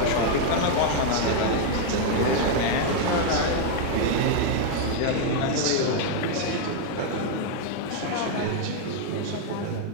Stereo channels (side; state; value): both; different; correlation 0.00